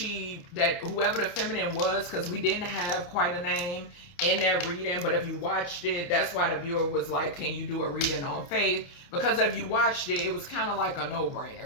that whoever the feminine was, because we didn't have quite a name in that reading, but if you watched it, that's why the viewer was like, can you do a reading on faith? Because if you watched it, it was kind of like a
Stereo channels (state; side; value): late; right; 29 ms